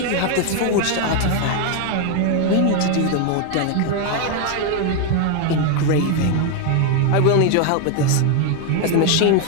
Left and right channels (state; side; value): different; both; correlation 0.01